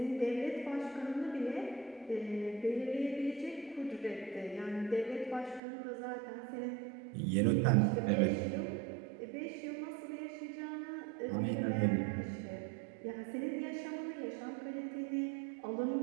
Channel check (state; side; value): drops out; left; at 5.6 s